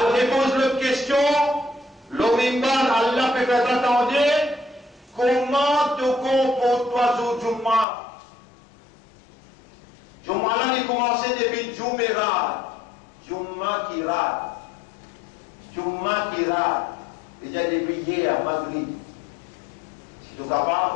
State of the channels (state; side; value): drops out; right; at 7.9 s